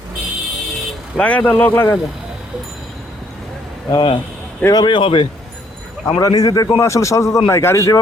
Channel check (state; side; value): normal; both; correlation 0.67